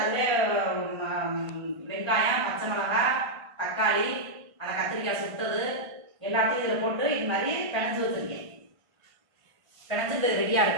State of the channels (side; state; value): left; late; 1.5 ms